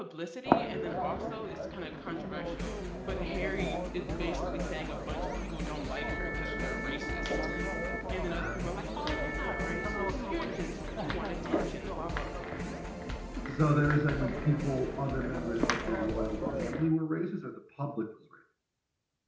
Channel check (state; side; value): identical; both; correlation 1.00